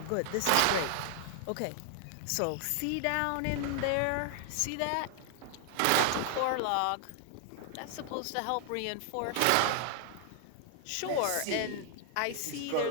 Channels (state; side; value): different; both; correlation 0.00